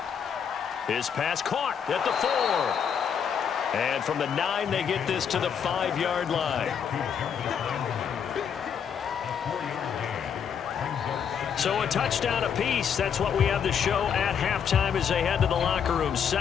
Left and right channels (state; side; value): quieter; right; 7.6 dB